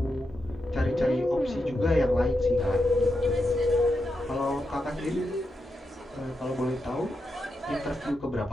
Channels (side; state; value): both; normal; correlation 0.86